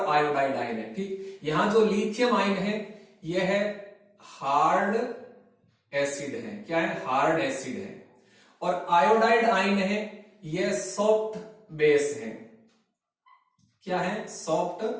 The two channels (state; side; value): identical; both; correlation 1.00